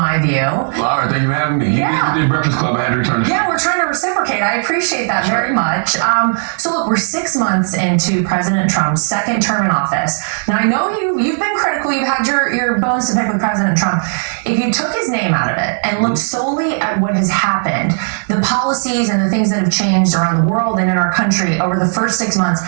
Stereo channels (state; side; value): silent; left; digital silence